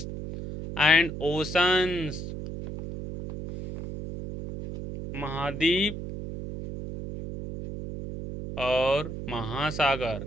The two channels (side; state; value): right; noise; hum, 7 dB below the sound